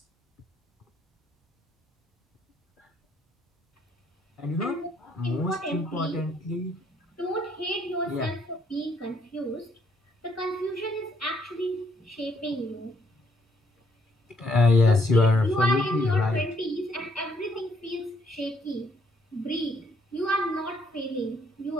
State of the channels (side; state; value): both; normal; correlation 0.70